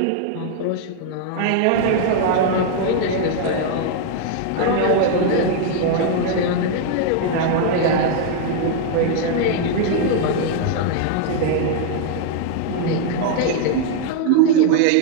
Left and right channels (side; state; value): both; different; correlation 0.00